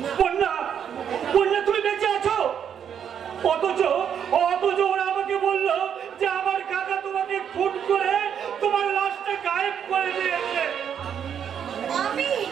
বন্যা, বন্যা, তুমি বেঁচে আছো? অথচ ওরা আমাকে বললো যে আমার কাকা তোমাকে খুন করে তোমার লাশটা গায়েব করে দিয়েছে। আমি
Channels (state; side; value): quieter; left; 8.4 dB